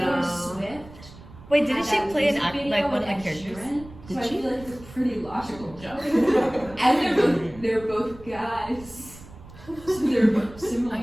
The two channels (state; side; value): noise; right; rumble, 19 dB below the sound